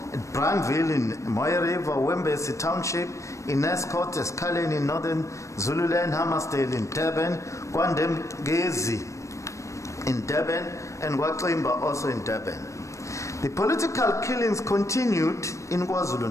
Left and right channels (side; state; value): right; late; 0.15 ms